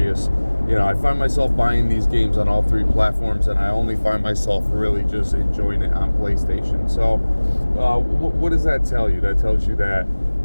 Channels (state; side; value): inverted; both; correlation -1.00